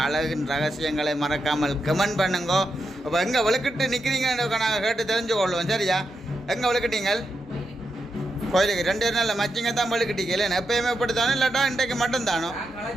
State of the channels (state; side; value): normal; both; correlation 0.85